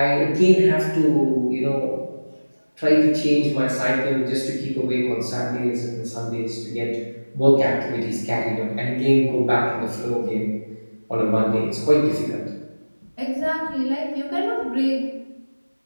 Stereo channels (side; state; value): both; inverted; correlation -1.00